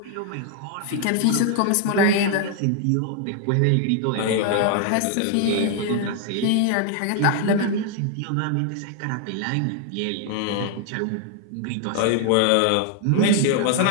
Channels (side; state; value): both; different; correlation 0.00